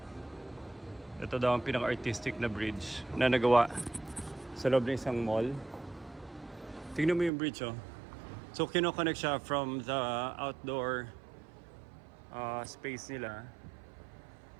Ito daw ang pinaka-artistic na bridge na nagawa sa loob ng isang mall. Tingnan mo yung bridge, oh. So, kinoconnect siya from the outdoor space nila.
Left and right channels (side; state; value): left; drops out; at 7.3 s